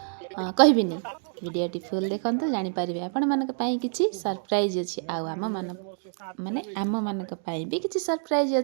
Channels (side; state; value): left; silent; digital silence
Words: कहबिनी वीडियोटी फुल देखते जानीपर आपण मान कि सरप्राइज अच्छी आम मान माने आम मान भी किसी सरप्राइज